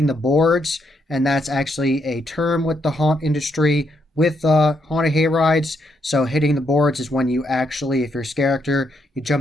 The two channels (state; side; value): normal; both; correlation 0.77